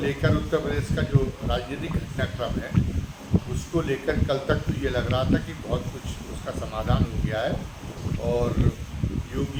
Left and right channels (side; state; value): both; identical; correlation 1.00